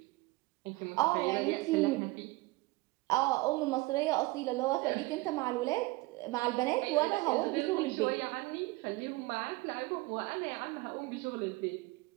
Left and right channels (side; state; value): left; quieter; 21.5 dB